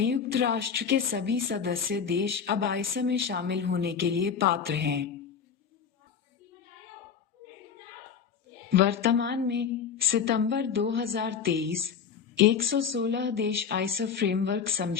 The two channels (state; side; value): quieter; right; 7.1 dB